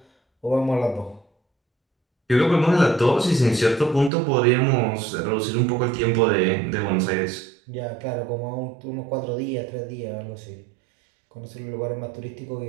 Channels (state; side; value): drops out; left; at 4.1 s